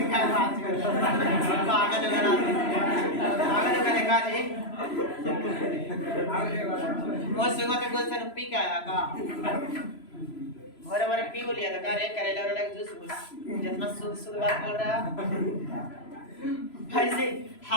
पागल देखा जी, वो सुबह के गोल से पी के आया का, भरे भरे पी लिया था का रे, करेला वाला जूस जितना शुद्ध बात बोल रहा ऐसे।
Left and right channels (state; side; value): late; right; 3.0 ms